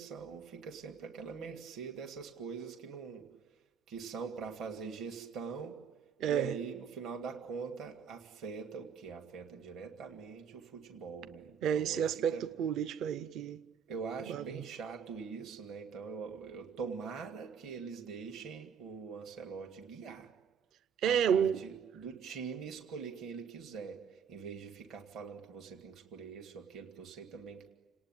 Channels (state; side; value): quieter; left; 7.2 dB